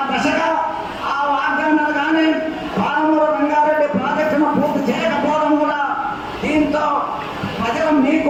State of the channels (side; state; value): both; identical; correlation 1.00